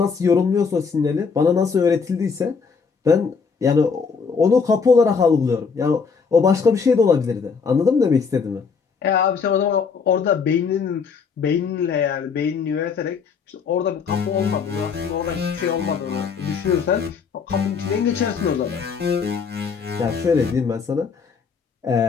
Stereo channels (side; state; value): right; quieter; 5.6 dB